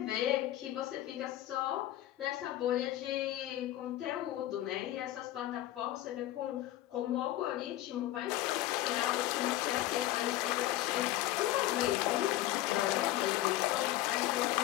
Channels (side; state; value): right; quieter; 14.9 dB